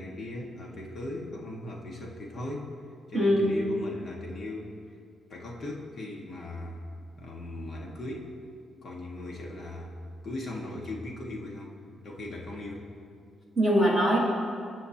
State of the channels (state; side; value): normal; both; correlation 0.79